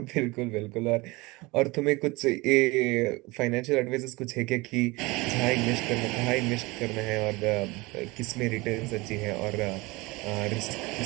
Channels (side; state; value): left; quieter; 23.3 dB